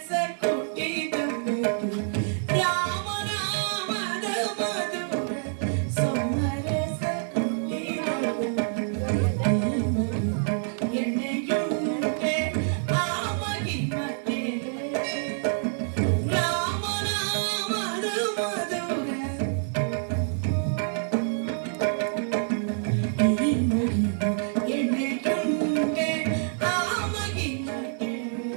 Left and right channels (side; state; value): left; silent; digital silence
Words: ಕೊಟ್ಟಿದ ರಾಮನಾಮದ ಮಧುರ ಸೋಮರಸ ಕೊಟ್ಟಿದ ಎಣ್ಣೆಯುಂಟೆ ಆಮಗಿ ಮತ್ತೆ ರಾಮನಾಮದ ಮಧುರ ಎಣ್ಣೆಯುಂಟೆ ಆಮಗಿ ಮತ್ತೆ